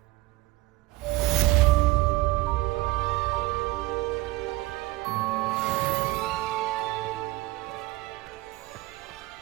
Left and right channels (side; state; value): left; quieter; 18.9 dB